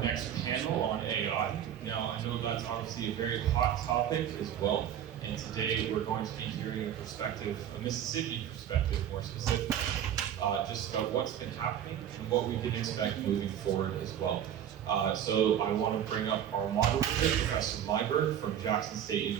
panel on AI. Now, I know that's obviously a very hot topic as well, and today we're going to be hearing a perspective, a Mississippi perspective more specifically, just about what's been happening and what we can expect moving forward as well. So I want to bring up our moderator, Professor Myberg from Jackson State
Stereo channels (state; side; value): quieter; left; 9.9 dB